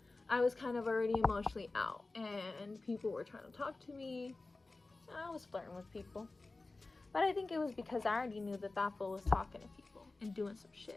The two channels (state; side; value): quieter; right; 3.3 dB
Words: I was kind of already emotionally out, and people were trying to talk to me. I was flirting with people, but I think it was because I already knew that that fool was talking to people and doing some